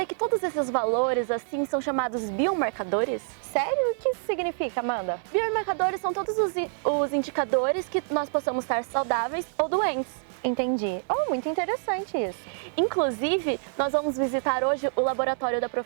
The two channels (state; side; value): silent; left; digital silence